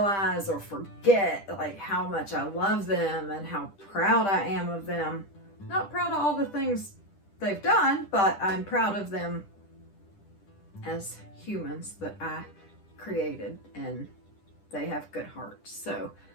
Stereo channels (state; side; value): late; right; 10 ms